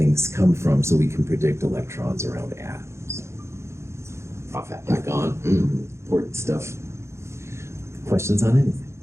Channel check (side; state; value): left; late; 0.13 ms